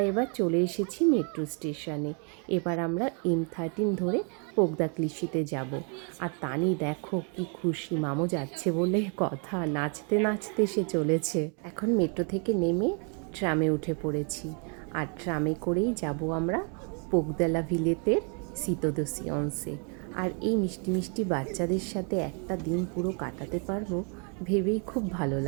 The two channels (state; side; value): quieter; left; 38.4 dB